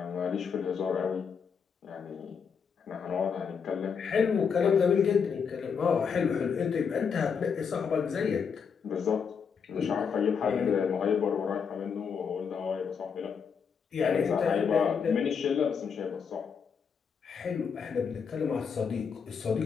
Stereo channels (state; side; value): quieter; right; 6.4 dB